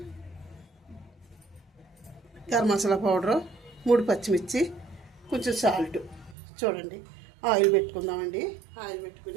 గరం మసాలా పౌడరు, 3 పచ్చిమిర్చి, కొంచెం సాల్ట్. చూడండి, ఆయిల్ పెట్టుకుందామండి. ఆయిల్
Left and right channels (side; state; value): left; drops out; at 6.4 s